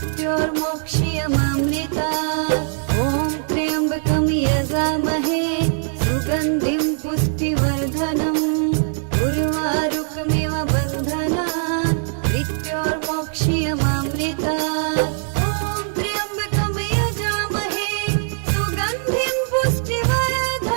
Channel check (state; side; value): silent; left; digital silence